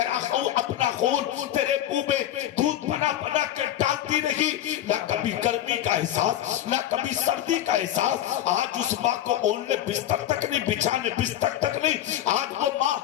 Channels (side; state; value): right; quieter; 12.2 dB